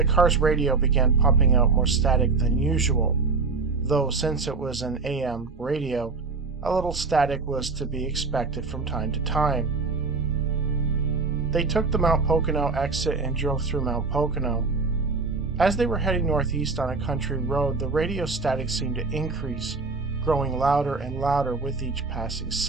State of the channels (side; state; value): left; quieter; 4.3 dB